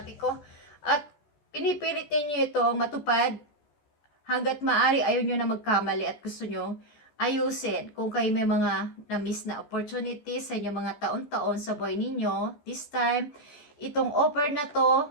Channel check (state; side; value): late; right; 14 ms